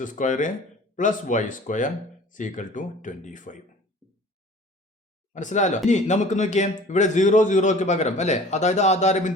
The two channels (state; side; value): normal; both; correlation 0.46